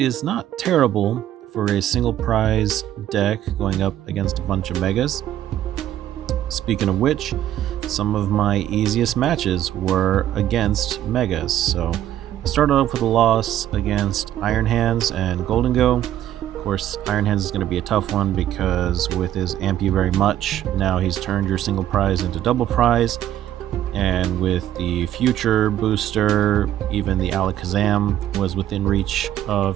not terrible for a single prize deck going up against a bunch of megas. Speaking of which, some of my easiest matches were against megas. So I started off with a loss against Iron Hands and Golden Go. Of course, Iron Hands is going to be a tough one because with his Amp You Very Much, now he's turned your single prize into double prize. And with the future booster, even the Alakazam was within reach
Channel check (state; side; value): quieter; left; 12.0 dB